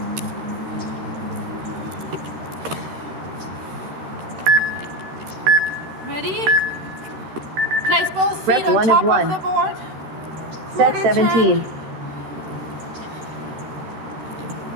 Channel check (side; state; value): left; late; 13 ms